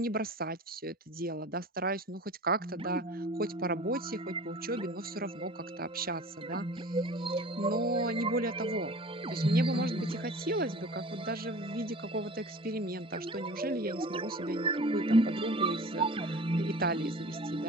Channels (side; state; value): both; normal; correlation 0.41